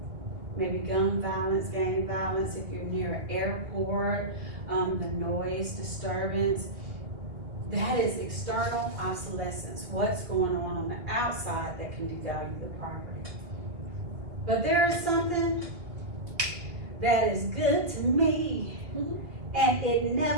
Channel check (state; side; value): late; left; 2.2 ms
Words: Maybe gun violence, gang violence, if you're near an airport, the noise disturbance. That is external obsolescence. What's going on the outside that can devalue the property. But there is something that is good to me, and it